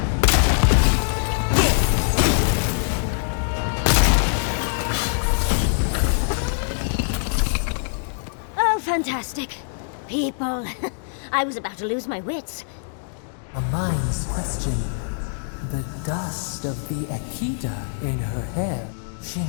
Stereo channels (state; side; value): silent; right; digital silence